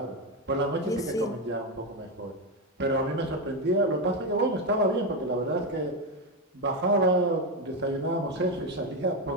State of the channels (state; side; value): normal; both; correlation 0.10